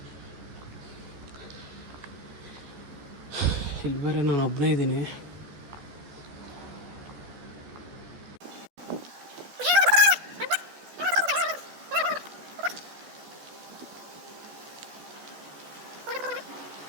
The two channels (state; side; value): late; left; 14 ms